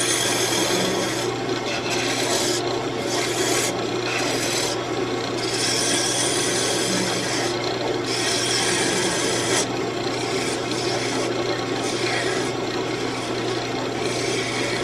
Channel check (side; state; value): right; noise; rumble, 21 dB below the sound